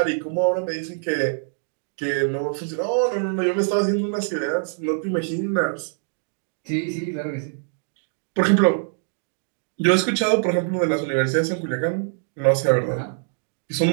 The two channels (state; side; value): silent; left; digital silence